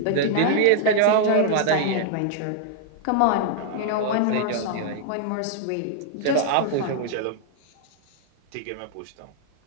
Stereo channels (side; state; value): both; different; correlation -0.01